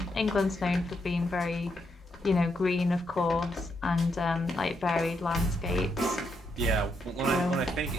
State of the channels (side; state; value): both; normal; correlation 0.79